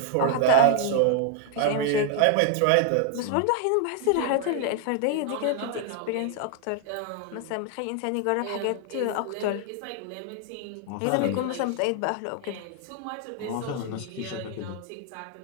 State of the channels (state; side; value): different; both; correlation 0.00